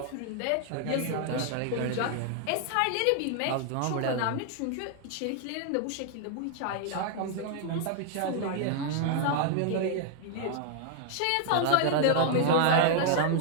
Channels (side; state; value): both; different; correlation 0.00